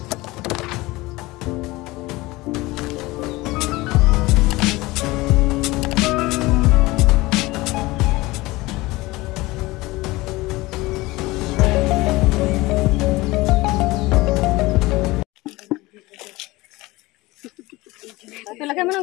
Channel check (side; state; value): right; quieter; 20.7 dB